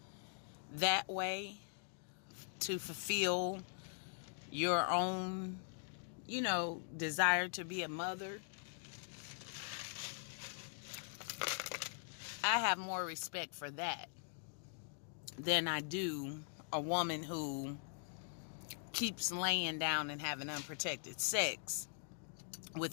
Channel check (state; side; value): silent; right; digital silence